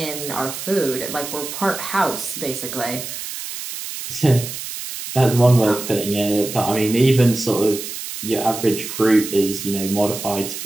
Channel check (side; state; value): right; noise; hiss, 8 dB below the sound